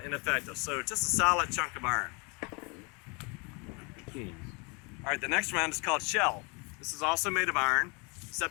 ineffective. So just a solid chunk of iron. All right, the next round is called shell. This is also made of iron,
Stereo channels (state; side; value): quieter; right; 31.1 dB